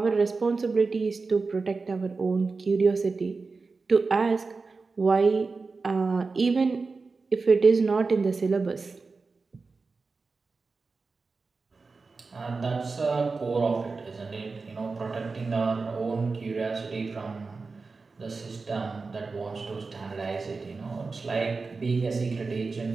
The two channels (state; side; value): quieter; left; 4.2 dB